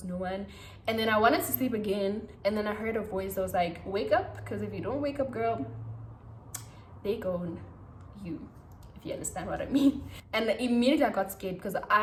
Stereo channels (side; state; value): both; identical; correlation 1.00